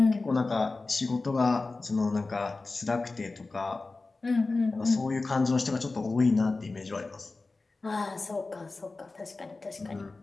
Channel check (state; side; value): quieter; right; 3.5 dB